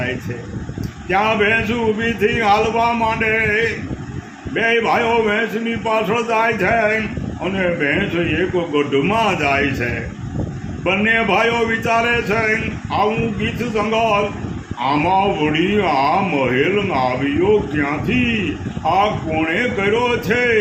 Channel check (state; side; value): identical; both; correlation 1.00